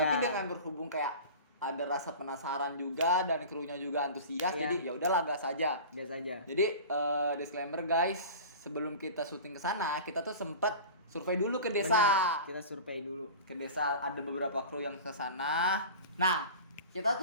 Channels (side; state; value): both; inverted; correlation -0.35